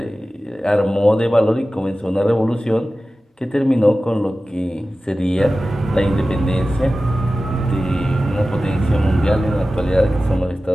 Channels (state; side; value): normal; both; correlation 0.95